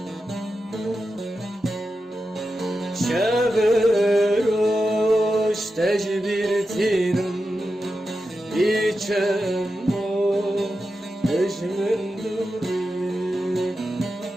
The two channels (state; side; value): normal; both; correlation 0.90